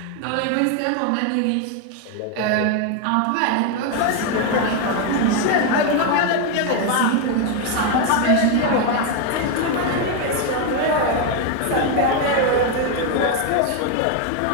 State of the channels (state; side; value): different; both; correlation 0.01